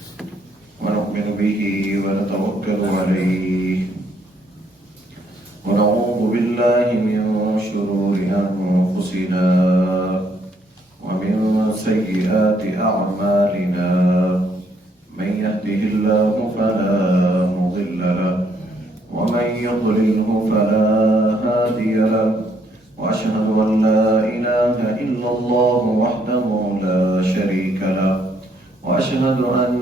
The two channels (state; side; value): normal; both; correlation 0.70